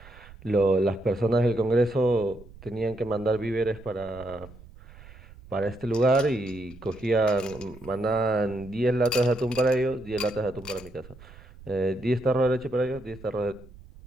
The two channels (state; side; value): noise; right; rumble, 20 dB below the sound